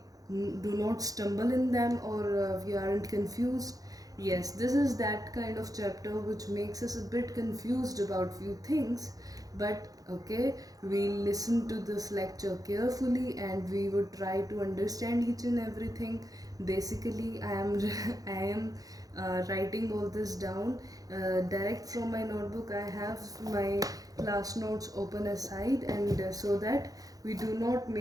do not stumble in them, or we aren't confused. Yes, this is that kind of chapter which makes us a bit confused about few things, but okay, we'll listen to this lecture carefully and we would try to understand each and everything. Basically I am writing all this down direct from my notebook. I have my class notes open aside, and so that we do not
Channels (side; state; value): left; late; 0.17 ms